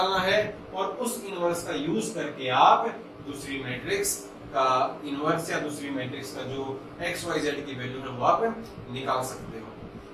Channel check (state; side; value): identical; both; correlation 1.00